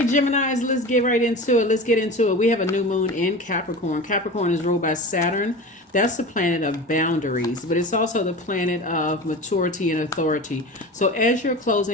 Geminis, let's get right into it. Let's get into it. We have a new moon in Capricorn. Capricorn is ruled by Saturn. That's the planet of boundaries, but it's also the planet of maturity and authority. So as you're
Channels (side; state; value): both; normal; correlation 0.32